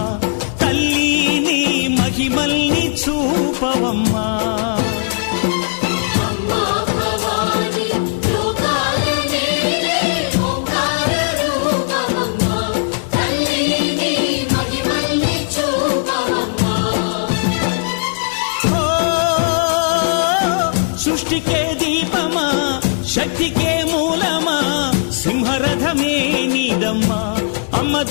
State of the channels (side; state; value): right; silent; digital silence